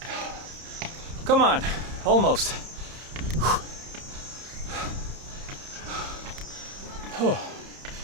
Come on, almost.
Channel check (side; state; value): left; late; 30 ms